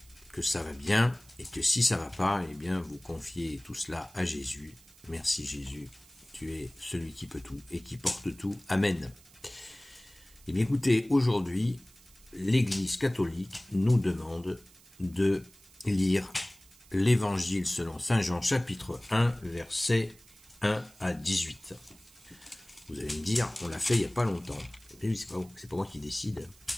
que ça va bien, et que si ça va pas, eh bien, vous confiez tout cela à Jésus. Merci Jésus. Tu es celui qui peut tout et qui porte tout. Amen. Eh bien, écoutez, aujourd'hui, l'Église catholique nous demande de lire l'Évangile selon saint Jean, chapitre 1, versets 1 à 18. Vous allez me dire, on l'a fait il n'y a pas longtemps. Et oui, c'est pas moi qui décide,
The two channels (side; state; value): right; noise; hiss, 25 dB below the sound